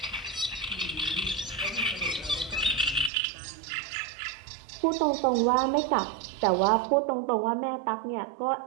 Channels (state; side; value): drops out; left; at 3.1 s